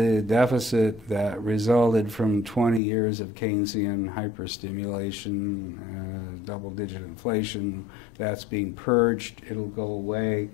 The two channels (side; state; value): right; drops out; at 2.8 s